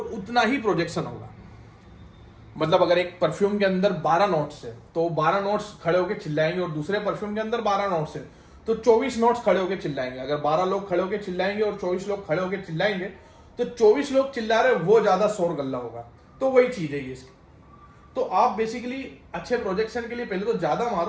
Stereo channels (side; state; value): both; identical; correlation 1.00